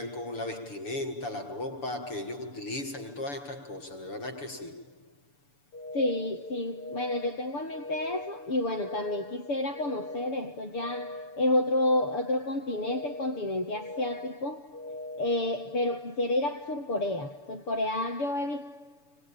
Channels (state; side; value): late; right; 6.9 ms